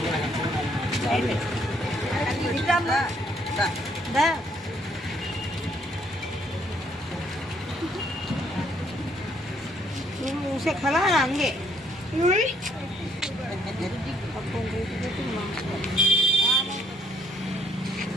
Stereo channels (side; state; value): both; normal; correlation 0.67